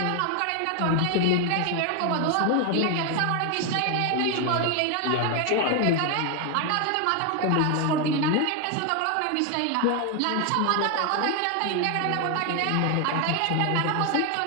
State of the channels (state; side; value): different; both; correlation 0.01